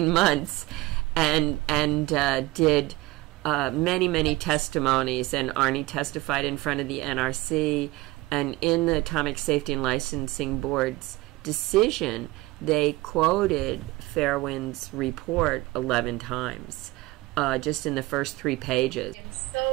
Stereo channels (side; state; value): left; quieter; 20.1 dB